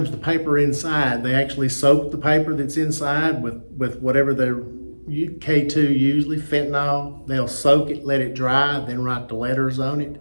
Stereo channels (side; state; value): both; inverted; correlation -1.00